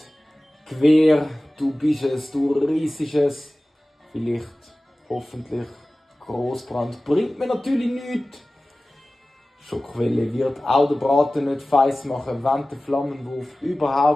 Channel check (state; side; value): normal; both; correlation 0.97